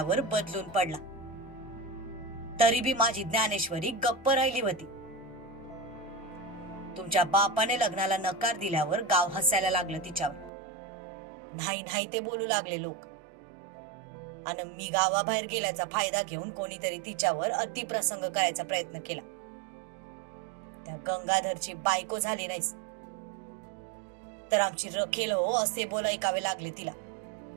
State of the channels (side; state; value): left; drops out; at 10.5 s